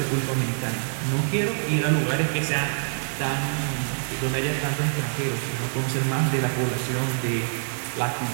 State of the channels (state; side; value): silent; left; digital silence